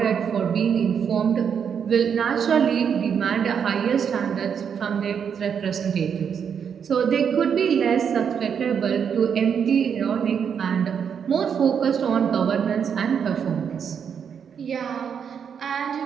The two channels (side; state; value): left; quieter; 7.4 dB